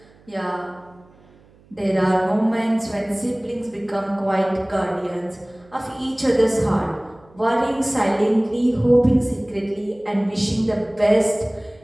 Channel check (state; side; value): noise; right; hum, 28 dB below the sound